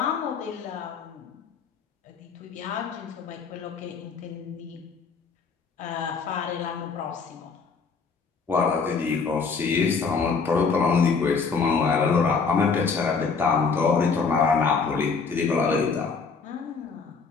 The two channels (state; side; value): quieter; right; 5.1 dB